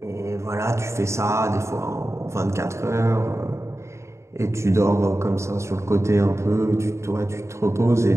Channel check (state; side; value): late; left; 0.14 ms